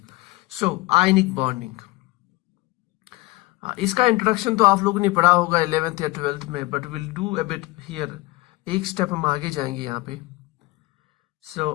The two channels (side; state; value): right; quieter; 21.5 dB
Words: So, ionic bonding. इसका introduction तो आप लोगों ने पढ़ा होगा 11th या 12th में, but we'll do a bit here. एक स्टेप हम आगे जाएंगे यहाँ पे. So,